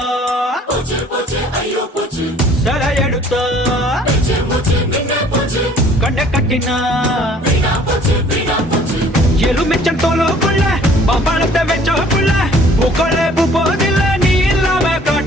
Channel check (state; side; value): normal; both; correlation 0.55